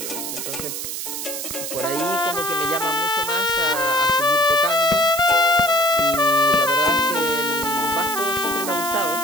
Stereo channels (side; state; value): right; noise; hiss, 5 dB below the sound